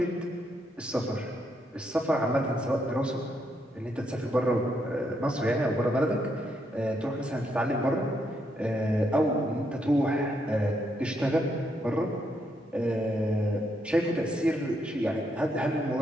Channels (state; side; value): normal; both; correlation 0.77